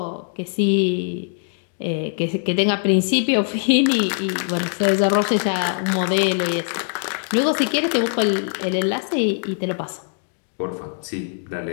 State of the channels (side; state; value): right; silent; 64 dB below the other